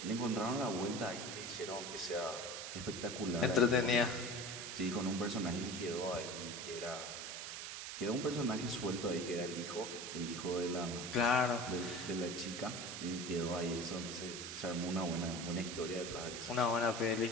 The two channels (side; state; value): right; noise; hiss, 6 dB below the sound